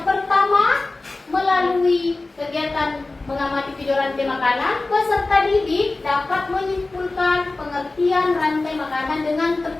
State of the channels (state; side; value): quieter; right; 3.2 dB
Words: pertama, melalui kegiatan mengamati video rantai makanan, peserta didik dapat menyimpulkan pengertian rantai makanan dengan